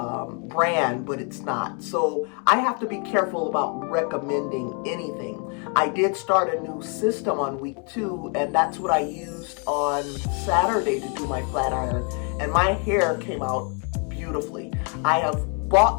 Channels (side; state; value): right; quieter; 37.9 dB